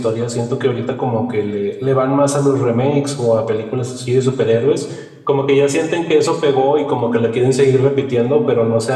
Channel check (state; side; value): identical; both; correlation 1.00